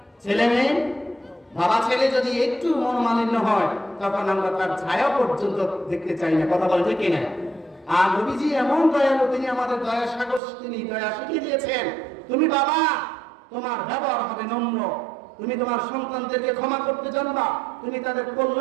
ছেলে মেয়ে, বাবা ছেলে যদি একটু মনোমালিন্য হয়, তখন আমরা তার ছায়া পর্যন্ত দেখতে চাই না। কথা বলে ঠিক কিনা? আর নবীজি এমন দয়ালু, তিনি আমাদের দয়া সাগর, তিনি দয়া শিখিয়ে দিয়েছেন। তুমি বাবা, তোমার ব্যবহার হবে নম্র, তুমি তোমার সন্তানদেরকে ক্ষমা করতে জানবা, তুমি তাদের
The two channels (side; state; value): left; drops out; at 10.4 s